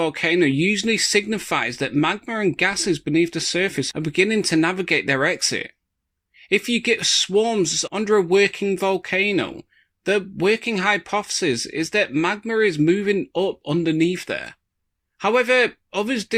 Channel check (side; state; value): both; identical; correlation 1.00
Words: usually signifies that magma and gases beneath the surface are beginning to navigate their exit. If you get swarms under a working volcano, the working hypothesis is that magma is moving up underneath there. However, others